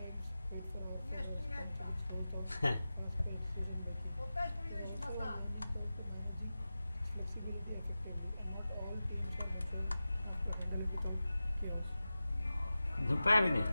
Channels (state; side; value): inverted; both; correlation -0.95